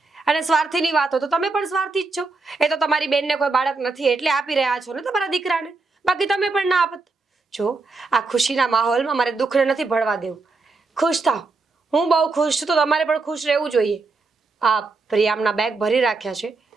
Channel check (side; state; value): left; quieter; 3.9 dB